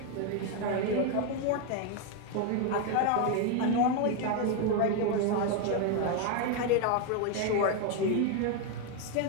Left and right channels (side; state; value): both; different; correlation 0.01